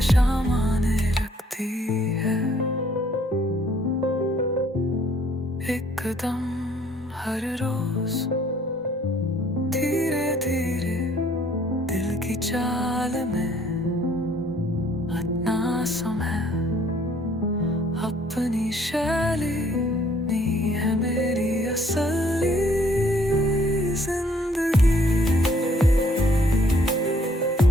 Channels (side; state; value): both; normal; correlation 0.62